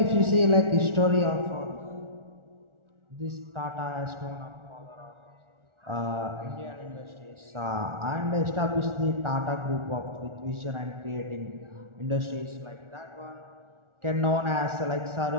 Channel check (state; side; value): late; left; 1.4 ms